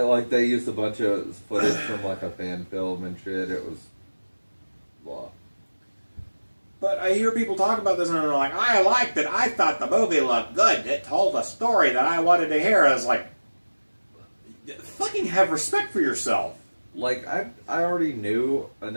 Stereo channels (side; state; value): both; inverted; correlation -1.00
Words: used a bunch of footage from, like, a fan film and shit. It was... blah. But I hear people talk about this and they're like, I liked it, I thought the movie looked good, it told a story that I wanted to hear. I was like, fucking have respect for yourself. Like, I already knew